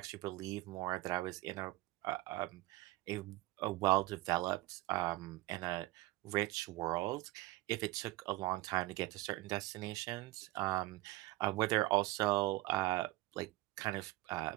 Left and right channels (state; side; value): quieter; left; 18.6 dB